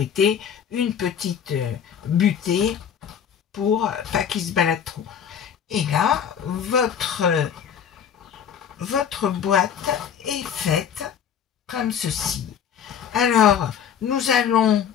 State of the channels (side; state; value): right; quieter; 8.2 dB